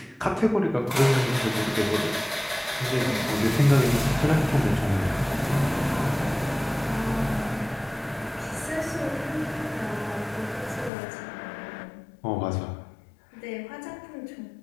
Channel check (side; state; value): right; drops out; at 10.9 s